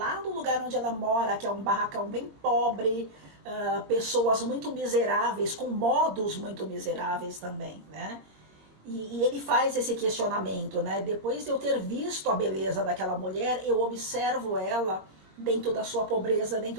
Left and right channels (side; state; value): left; late; 22 ms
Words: no lugar onde ela mora, que é um barracão bem pobre, pessoas muito miseráveis, com modos muito miseráveis também, né? E ele faz esse questionamento, né? Depois de eu ter visto a beleza daquela mulher, eu observo ela dentro da sua pobreza,